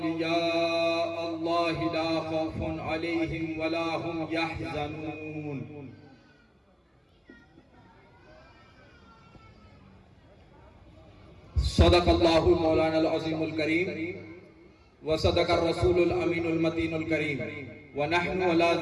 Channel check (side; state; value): both; identical; correlation 1.00